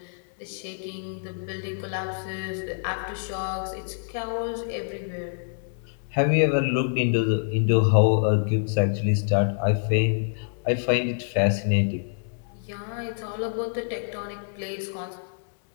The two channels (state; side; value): silent; right; digital silence